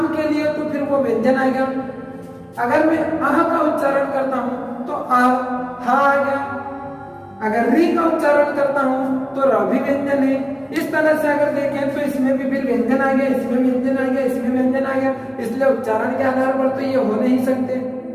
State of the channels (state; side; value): identical; both; correlation 1.00